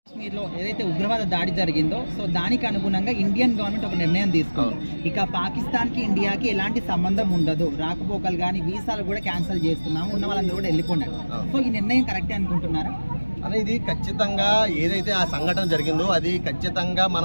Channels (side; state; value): both; inverted; correlation -1.00